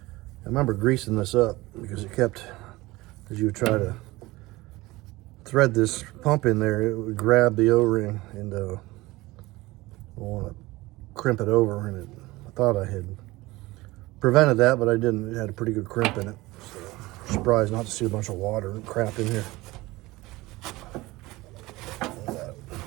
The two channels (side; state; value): left; quieter; 20.1 dB